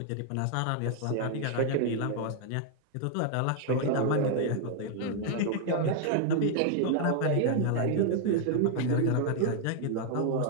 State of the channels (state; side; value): different; both; correlation 0.00